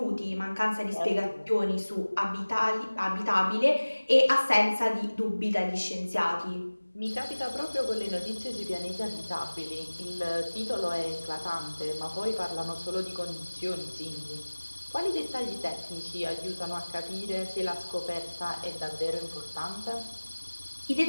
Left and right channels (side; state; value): both; inverted; correlation -1.00